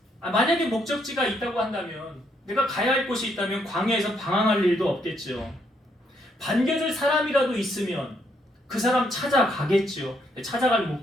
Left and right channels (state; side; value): normal; both; correlation 0.73